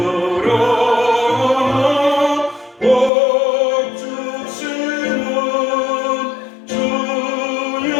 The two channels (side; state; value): right; drops out; at 3.1 s